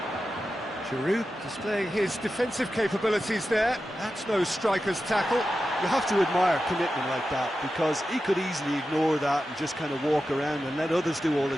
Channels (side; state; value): both; normal; correlation 0.92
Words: Giroud displaying his defensive capabilities there. That's no striker's tackle. You have to admire commitment like that, because he could easily ignore that and just kind of walk around and let others do all the